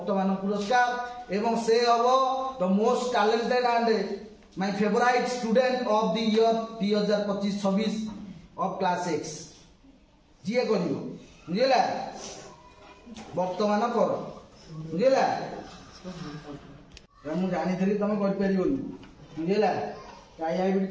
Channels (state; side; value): identical; both; correlation 1.00